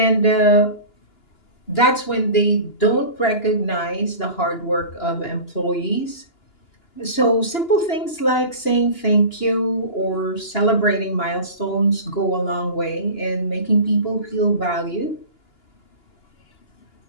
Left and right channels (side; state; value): right; late; 2.9 ms